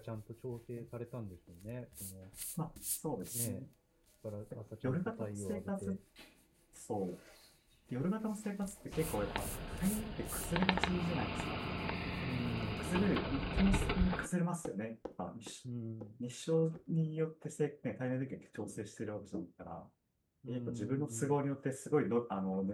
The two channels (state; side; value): identical; both; correlation 1.00